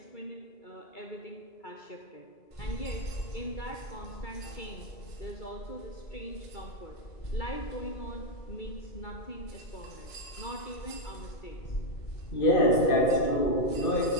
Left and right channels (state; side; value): late; right; 2.3 ms